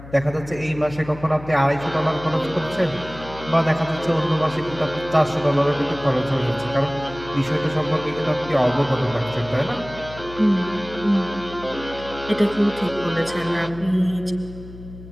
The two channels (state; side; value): noise; left; hum, 16 dB below the sound